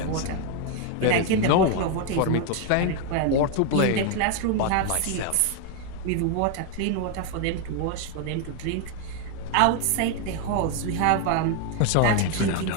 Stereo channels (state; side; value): different; both; correlation 0.01